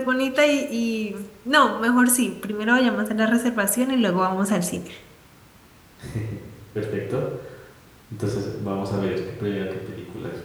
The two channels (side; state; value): both; identical; correlation 1.00